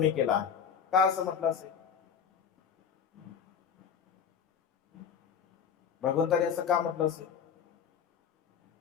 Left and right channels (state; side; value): quieter; right; 7.4 dB